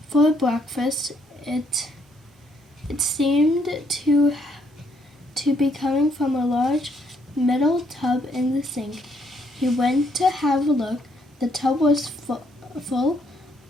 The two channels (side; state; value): both; normal; correlation 0.70